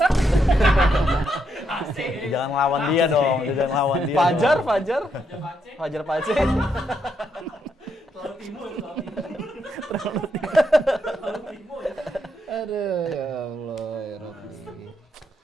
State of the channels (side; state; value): both; normal; correlation 0.78